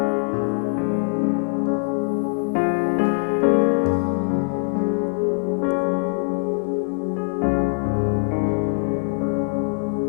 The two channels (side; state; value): right; silent; digital silence